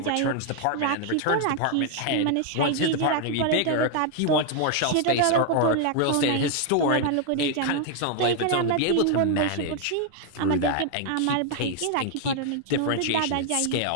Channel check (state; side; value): different; both; correlation 0.00